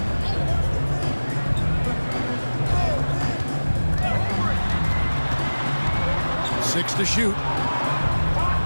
Six to shoot.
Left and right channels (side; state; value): both; inverted; correlation -1.00